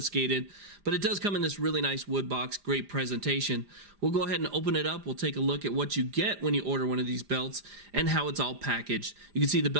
But it does come in this really nice wood box, great presentation. We'll go ahead and open it up. We'll take a look at what you get when you order one of these belts and how it's all packaged. You can see the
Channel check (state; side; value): late; left; 4.9 ms